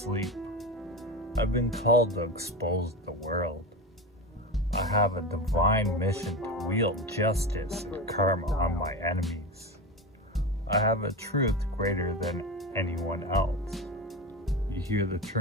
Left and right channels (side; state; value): both; normal; correlation 0.23